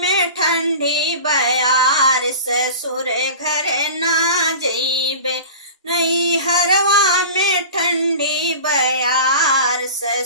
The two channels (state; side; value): inverted; both; correlation -0.35